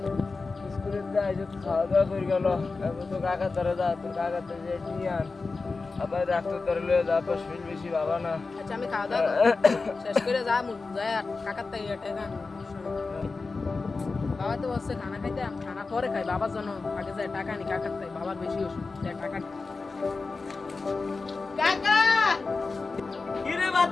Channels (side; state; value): right; quieter; 4.0 dB